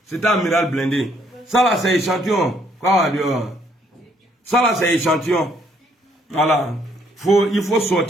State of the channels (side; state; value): both; normal; correlation 0.68